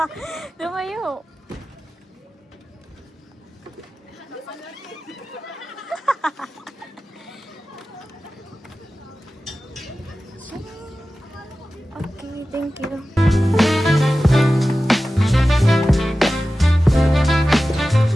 Lumayo. Okay, thank you.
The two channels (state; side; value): normal; both; correlation 0.95